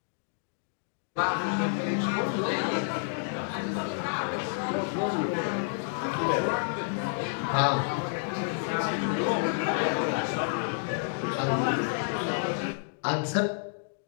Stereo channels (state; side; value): silent; right; digital silence